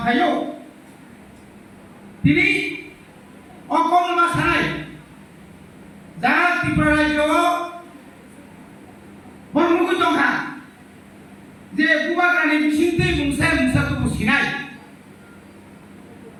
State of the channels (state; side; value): identical; both; correlation 1.00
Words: তিনি অকম মাসানাই যারা ত্রিপুরা রাজ্য বর্মুখ দংখা যে বুবাগ্রানি বিসিন্তে মুংসায় মুংসা তো বসিনাই